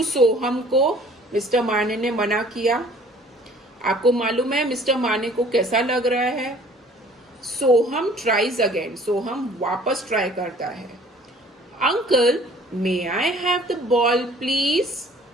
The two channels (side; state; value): both; normal; correlation 0.53